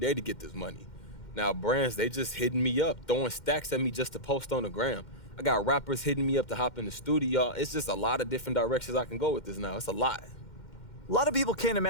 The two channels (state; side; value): late; right; 2.1 ms